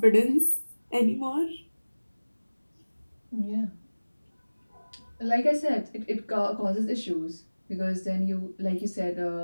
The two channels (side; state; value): both; inverted; correlation -1.00